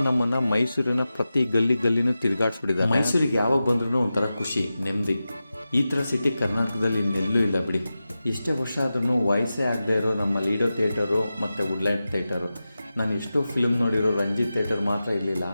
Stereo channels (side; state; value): both; inverted; correlation -0.93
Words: ನಮ್ಮನ್ನು ಮೈಸೂರಿನ ಪ್ರತಿ ಗಲ್ಲಿನೂ ತಿರುಗಾಡ್ಸ್ಬಿಟ್ಟಿದ್ದಾರೆ. ಮೈಸೂರಿಗೆ ಯಾವಾಗ ಬಂದ್ರೂ ಒಂಥರ ಖುಷಿ, ನೆಮ್ಮದಿ. ಈ ಥರ ಸಿಟಿ ಕರ್ನಾಟಕದಲ್ಲಿ ಇನ್ನೆಲ್ಲೂ ಇಲ್ಲ ಬಿಡಿ. ಎಷ್ಟೇ ವರ್ಷ ಆದ್ರೂ ವಯಸ್ಸೇ ಆಗದೆ ಇರೋ ನಮ್ಮ ಲೀಡೋ ಥಿಯೇಟರು ಮತ್ತು ವುಡ್ಲ್ಯಾಂಡ್ ಥಿಯೇಟರು. ನಾನು ಎಷ್ಟೋ ಫಿಲ್ಮ್ ನೋಡಿರೋ ರಂಜಿತ್ ಥಿಯೇಟರ್ ಮಾತ್ರ ಇರಲಿಲ್ಲ.